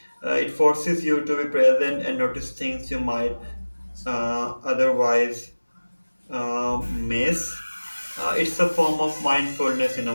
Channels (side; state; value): both; inverted; correlation -1.00